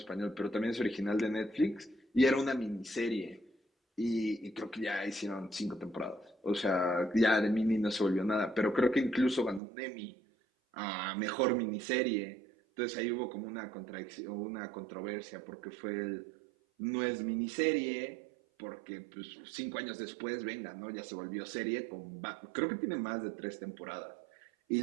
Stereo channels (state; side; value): drops out; left; at 9.6 s